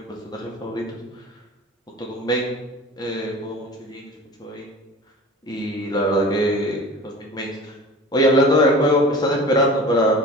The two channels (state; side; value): normal; both; correlation 0.39